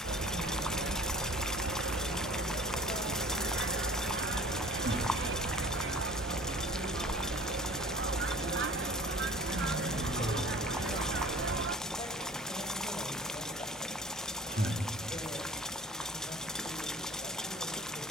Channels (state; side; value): normal; both; correlation 0.46